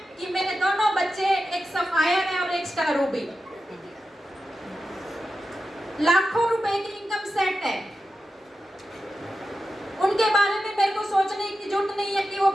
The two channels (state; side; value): normal; both; correlation 0.91